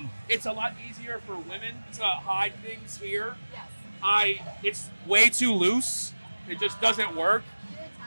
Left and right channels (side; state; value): both; inverted; correlation -1.00